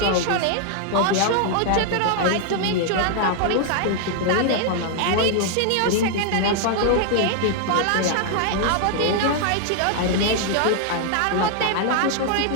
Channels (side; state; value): both; different; correlation 0.00